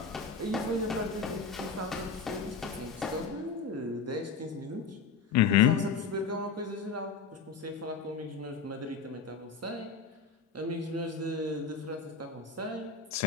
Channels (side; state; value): right; quieter; 5.3 dB